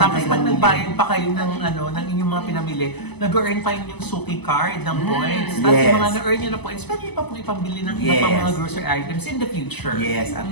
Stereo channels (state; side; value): late; right; 0.99 ms